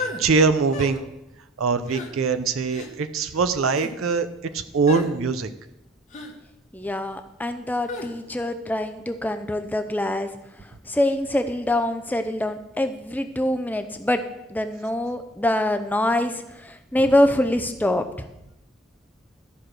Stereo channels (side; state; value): both; normal; correlation 0.56